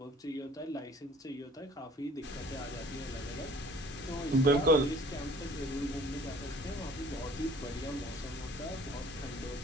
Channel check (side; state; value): both; normal; correlation 0.52